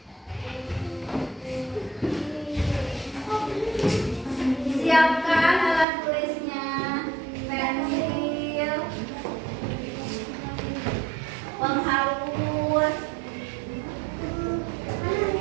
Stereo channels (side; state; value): left; drops out; at 5.9 s